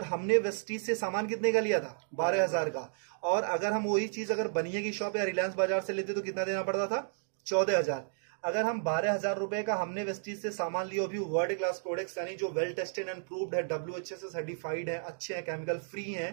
हमने वेस्टीज से सामान कितने का लिया था? 12,000 का। और अगर हम वही चीज अगर बनिया की शॉप या रिलायंस बाजार से लेते तो कितना देना पड़ता था? 14,000। अगर हम 12,000 रुपए का हमने वेस्टीज से सामान लिया, भी वर्ल्ड क्लास प्रोडक्ट्स, यानी जो वेल टेस्टेड एंड प्रूव्ड है, WHA से सर्टिफाइड है, अच्छे हैं, केमिकल फ्री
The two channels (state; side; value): silent; left; digital silence